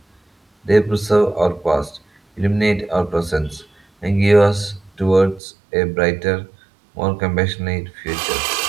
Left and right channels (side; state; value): left; drops out; at 5.4 s